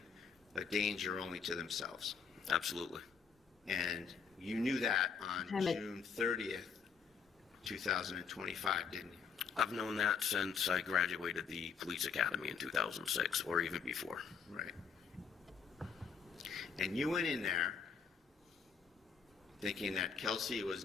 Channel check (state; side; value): quieter; right; 6.2 dB